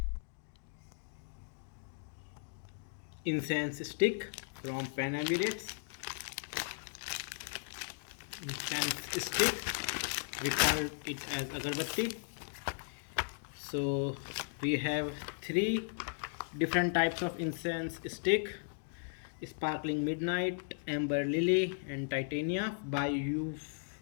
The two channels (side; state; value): right; silent; digital silence